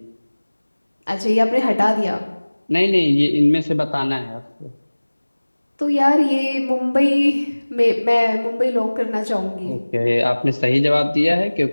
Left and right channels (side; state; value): both; inverted; correlation -1.00